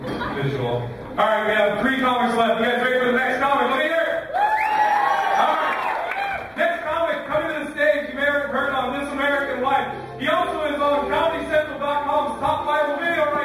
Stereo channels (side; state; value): both; identical; correlation 1.00